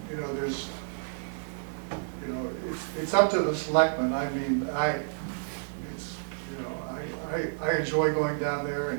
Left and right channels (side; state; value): left; silent; 58 dB below the other